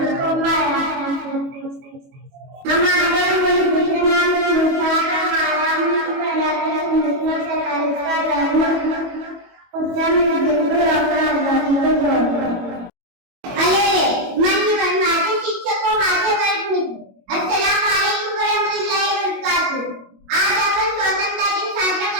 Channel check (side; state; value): left; late; 22 ms